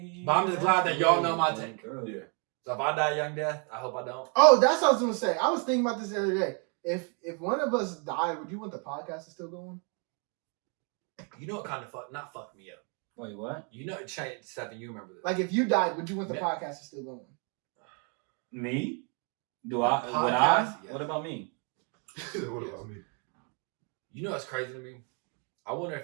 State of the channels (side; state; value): left; quieter; 37.9 dB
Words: But I'm just glad that y'all know my take. Yeah. So if I die young death, I hope I don't. Oh, that's what I was gonna say. I was thinking about this the other day. If one of us died, would you want the podcast to still go on? You know what kind of not fuck me up. Wait, what? You know, Stephen, you remember this. Like if you died, would you want the Yeah. podcast to still go on? Me? The Would I? podcast, yes. What about me? What about me? You know what's crazy to me? I wonder